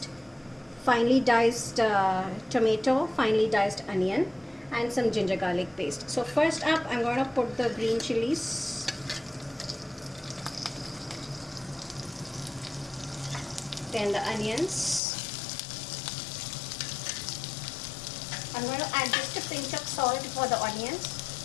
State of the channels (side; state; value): right; drops out; at 15.0 s